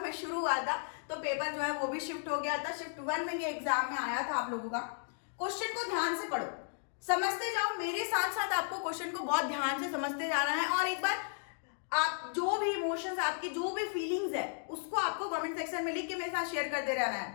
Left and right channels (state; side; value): silent; right; digital silence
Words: शुरू हुआ था तो पेपर जो है वो भी शिफ्ट हो गया था। शिफ्ट 1 में ये एग्जाम में आया था आप लोगों का। क्वेश्चन को ध्यान से पढ़ो, समझते जाओ, मेरे साथ साथ आपको क्वेश्चन को बहुत ध्यान से समझते जाना है। और एक बार आप जो भी इमोशंस, आपकी जो भी फीलिंग्स है, उसको आपको कमेंट सेक्शन में लिख के मेरे साथ शेयर करते रहना है।